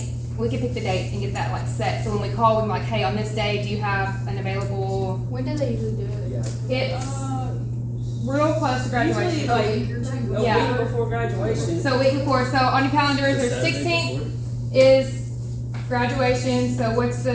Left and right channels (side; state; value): both; identical; correlation 1.00